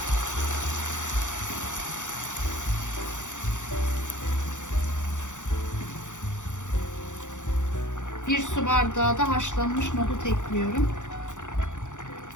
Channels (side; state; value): right; late; 0.85 ms